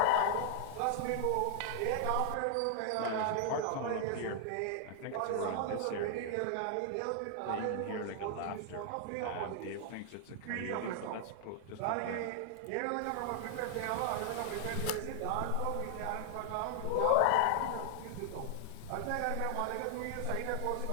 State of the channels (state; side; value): different; both; correlation 0.00